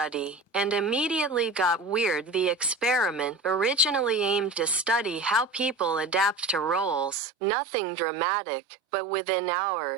and immediately got weird. The experiment originally aimed to study how people adapt to roles, nothing dramatic, but within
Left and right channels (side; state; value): left; drops out; at 7.2 s